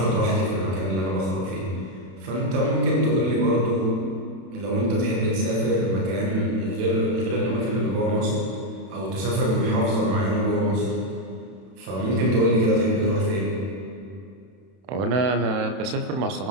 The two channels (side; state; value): left; late; 31 ms